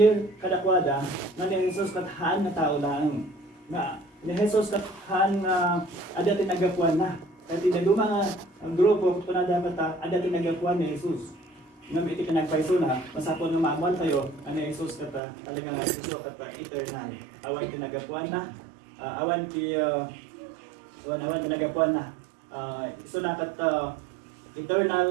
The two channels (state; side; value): drops out; left; at 15.2 s